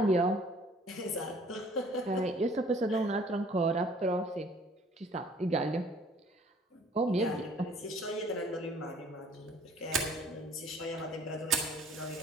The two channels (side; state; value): both; normal; correlation 0.56